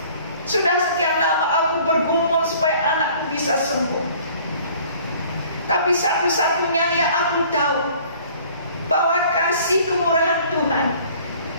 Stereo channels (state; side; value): inverted; both; correlation -0.53